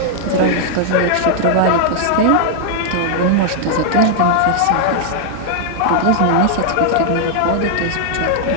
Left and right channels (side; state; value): both; different; correlation -0.01